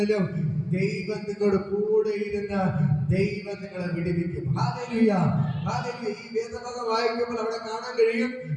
ദൈവം നിങ്ങളുടെ കൂടെ ഇരുന്ന് ദൈവം നിങ്ങളെ വിടുവിക്കും. Hallelujah, hallelujah. ഈ വേദഭാഗം വായിക്കുമ്പോൾ അവിടെ കാണാൻ കഴിയും,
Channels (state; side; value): identical; both; correlation 1.00